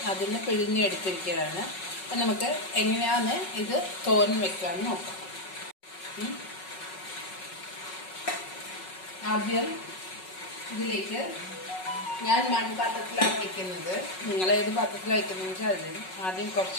അതിന് പിഴിഞ്ഞെടുത്തിരിക്കുകയാണ്. അപ്പം നമുക്ക് എങ്ങനെയാണ് ഇത് തോരൻ വെക്കാമെന്ന് നോക്കാം. ആദ്യം ഇതിലേക്ക് ഞാൻ മൺപാത്രത്തിലാണ് വയ്ക്കുന്നത്. നിങ്ങൾ ഏത് പാത്രത്തിലാണ് വയ്ക്കുന്നതെന്ന് വെച്ചാൽ അതിൽ ആദ്യം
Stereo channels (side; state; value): right; late; 5.4 ms